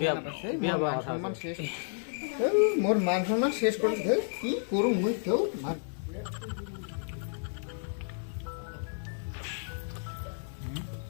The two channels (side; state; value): right; silent; digital silence